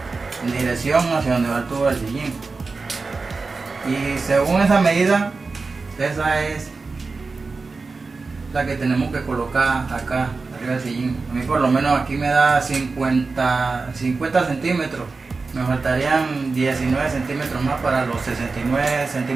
en dirección hacia donde va el tubo del sillín. Y según esa medida, esa es la que tenemos que colocar acá arriba del sillín. A mí por lo menos aquí me da 50 centímetros. Me faltarían 19 centímetros más para los 69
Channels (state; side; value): quieter; left; 4.1 dB